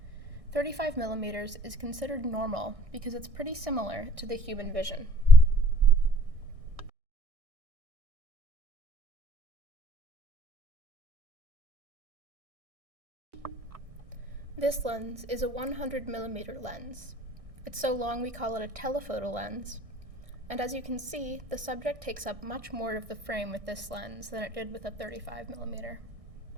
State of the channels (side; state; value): left; late; 1.6 ms